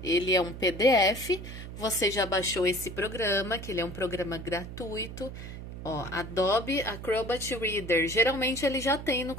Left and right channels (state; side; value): noise; right; hum, 10 dB below the sound